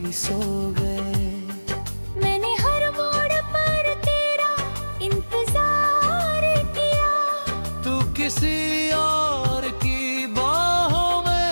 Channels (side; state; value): both; inverted; correlation -1.00